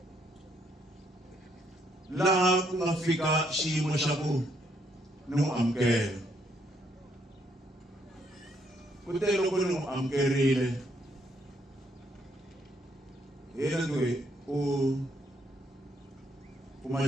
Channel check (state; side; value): normal; both; correlation 0.72